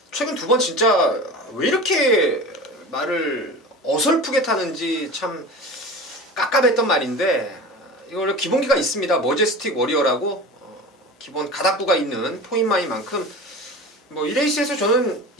최근 2번 진짜 왜 이렇게 말을 어설프게 타는지 참 깝깝했던 말인데, 이거 원래 기본기가 있습니다. 머제스틱 워리어라고 기본 가닥부가 있는 포인마이만큼 뭐 이 레이스에서 저는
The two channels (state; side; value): normal; both; correlation 0.34